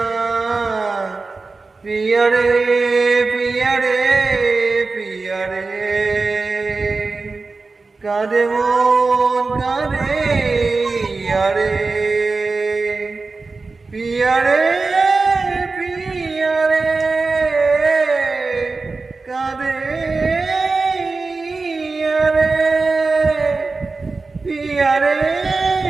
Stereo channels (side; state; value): left; quieter; 3.9 dB